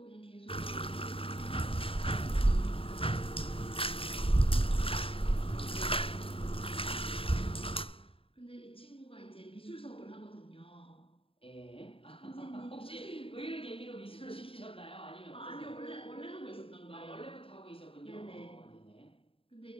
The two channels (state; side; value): late; right; 0.27 ms